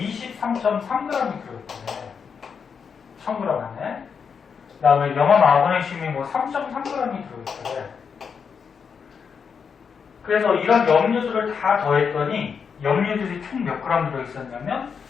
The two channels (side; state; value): right; quieter; 6.3 dB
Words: 들어있대. 1000g 안에. 그 다음에 염화마그네슘이 뭐 3.3g이 들어있대. 그래서 이런 염류들을 다 더했더니 염류들이 총 몇 그램 들어있었냐면